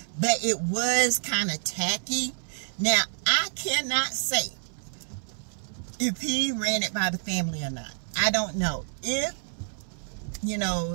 but it was kind of tacky. Now, I cannot say if he ran it by the family or not. I don't know. If, you know,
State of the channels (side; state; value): left; silent; 59 dB below the other